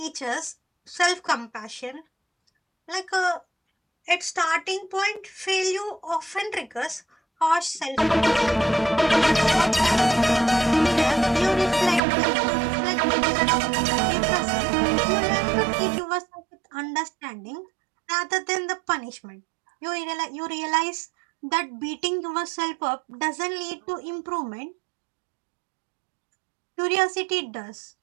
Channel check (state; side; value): drops out; left; at 12.0 s